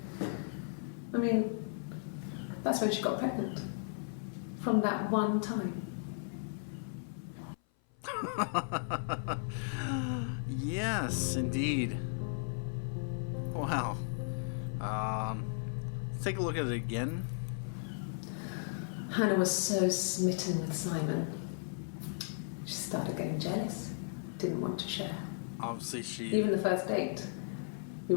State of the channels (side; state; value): right; silent; 54 dB below the other